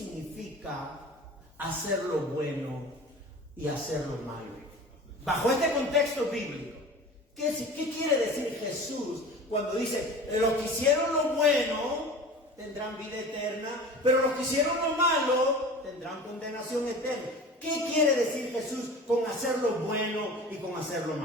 hacer lo bueno y hacer lo malo? Bajo este contexto bíblico, ¿qué quiere decir Jesús cuando dice, los que hicieron lo bueno tendrán vida eterna, pero los que hicieron lo malo tendrán condenación eterna? ¿Qué quiere decir Jesús con hacer lo bueno y con hacer lo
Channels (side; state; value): both; normal; correlation 0.38